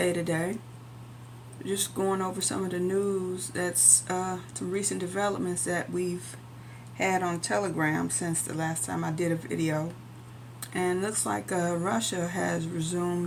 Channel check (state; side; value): identical; both; correlation 1.00